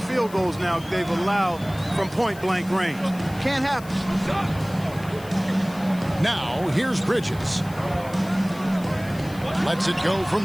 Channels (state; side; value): noise; left; hiss, 20 dB below the sound